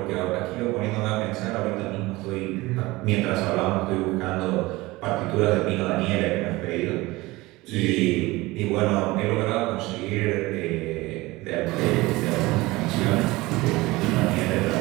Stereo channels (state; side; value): quieter; left; 20.7 dB